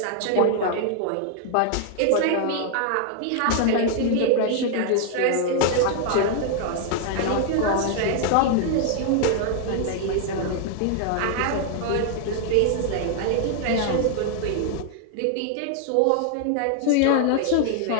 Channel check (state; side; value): different; both; correlation 0.00